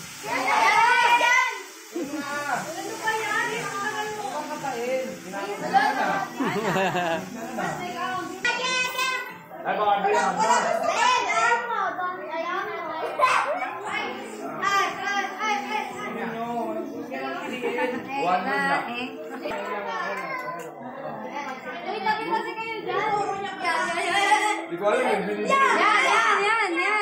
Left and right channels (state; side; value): identical; both; correlation 1.00